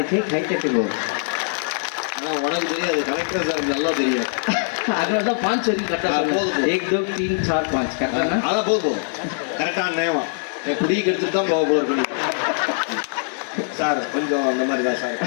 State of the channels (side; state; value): right; silent; digital silence